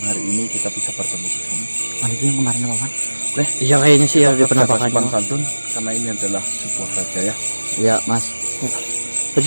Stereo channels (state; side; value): inverted; both; correlation -1.00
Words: hari ini kita bisa bertemu di sini. Itu yang kemarin apa, Pak? Oke. Iya kayaknya sih ya di penampakannya. Sopan santun karena ini adalah sebuah raja ya. Iya, Mas. Terus